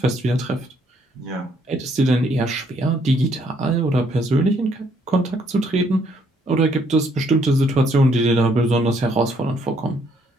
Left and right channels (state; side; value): normal; both; correlation 0.68